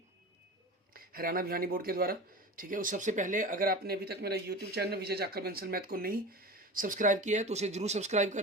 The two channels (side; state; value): both; normal; correlation 0.31